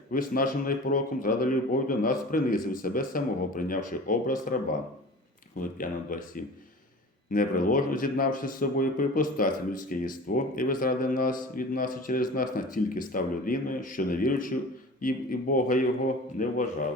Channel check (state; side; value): normal; both; correlation 0.38